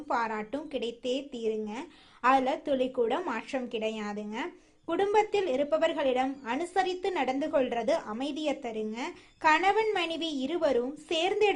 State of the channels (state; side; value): identical; both; correlation 1.00